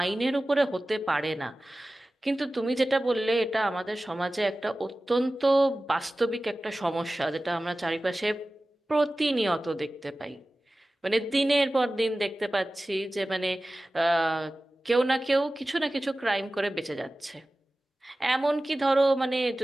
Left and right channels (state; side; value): normal; both; correlation 0.96